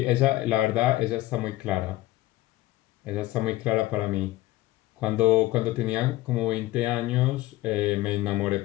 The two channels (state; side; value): quieter; right; 17.2 dB